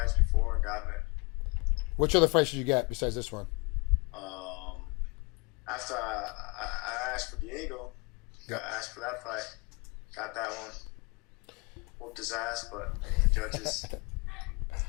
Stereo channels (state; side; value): quieter; right; 29.0 dB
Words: before and gotten it. Which other fights did you get besides this one? After I asked for Diego, I asked for that fight, got that one. Whooped his ass, but the judges